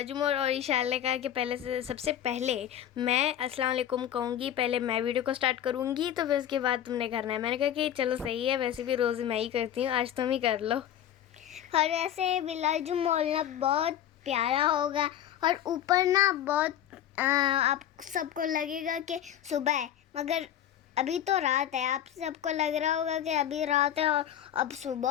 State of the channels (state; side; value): quieter; right; 10.8 dB